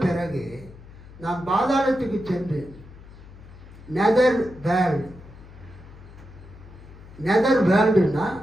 பிறகு நான் பாதாளத்துக்கு சென்று நெதர் வேர்ல்டு, நெதர் வேர்ல்டுன்னா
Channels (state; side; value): noise; left; hum, 19 dB below the sound